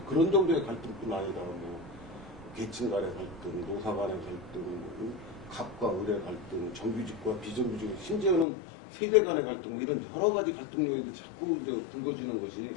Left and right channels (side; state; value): right; drops out; at 8.5 s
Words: 그런 정도의 갈등뿐 아니라 뭐 계층 간의 갈등, 노사 간의 갈등, 갑과 을의 갈등, 정규직과 비정규직, 심지어는 세대 간의 갈등, 뭐 이런 여러 가지 갈등 요인이 자꾸 이제 불거지는 것이